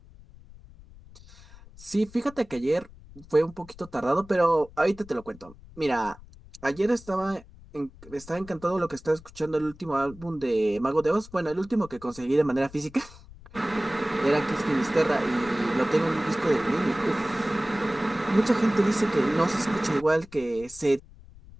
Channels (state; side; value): noise; left; rumble, 21 dB below the sound